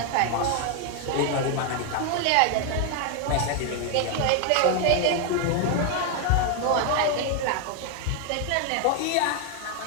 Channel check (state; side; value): different; both; correlation 0.01